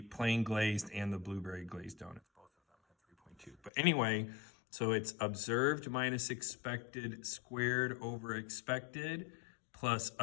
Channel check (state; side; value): drops out; right; at 3.7 s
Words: plain glazed and the blueberry glazed donuts. Both of them have 3.2. But anyway, so it's observed minus expected squared over expected plus